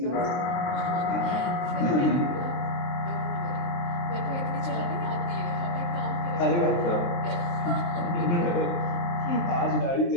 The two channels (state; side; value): late; right; 23 ms